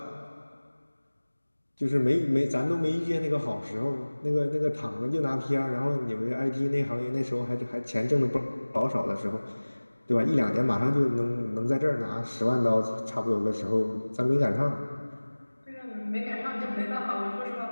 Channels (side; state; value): both; inverted; correlation -1.00